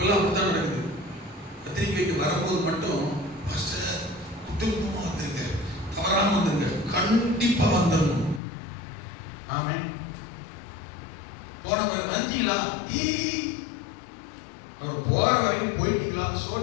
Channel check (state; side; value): drops out; right; at 8.4 s